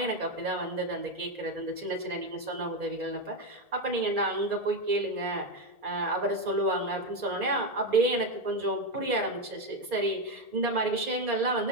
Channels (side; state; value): left; late; 2.4 ms